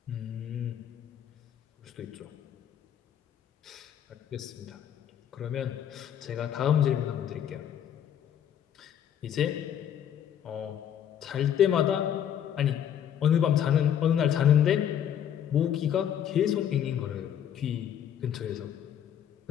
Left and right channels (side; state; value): right; quieter; 9.6 dB